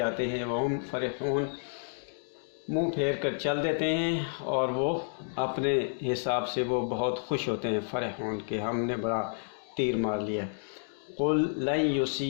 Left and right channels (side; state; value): right; silent; digital silence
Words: ہیں، وَهُمْ فَرِحُونَ منہ پھیر کر چل دیتے ہیں، اور وہ اپنے حساب سے وہ بہت خوش ہوتے ہیں، فرحون کہ ہم نے بڑا تیر مار لیا۔ قُلْ لَن